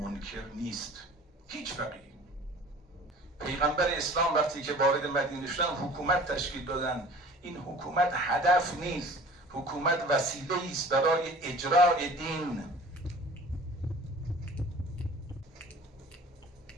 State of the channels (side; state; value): both; normal; correlation 0.45